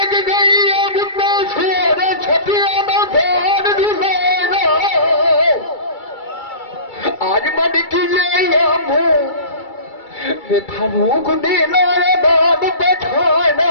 गई अब ना सोर छपिया ना धान दुलाना आज मन की ले मुँह फारूक देना बाब बैठाना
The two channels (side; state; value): right; late; 2.3 ms